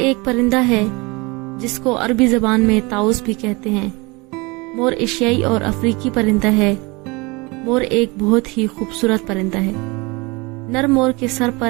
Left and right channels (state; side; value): quieter; left; 26.1 dB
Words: پرندہ ہے جس کو عربی زبان میں طاؤس بھی کہتے ہیں۔ مور ایشیائی اور افریقی پرندہ ہے۔ مور ایک بہت ہی خوبصورت پرندہ ہے۔ نر مور کے سر